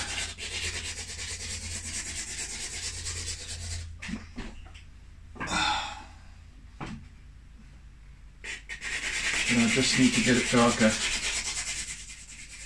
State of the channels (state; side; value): identical; both; correlation 1.00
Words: But I just need to get it darker.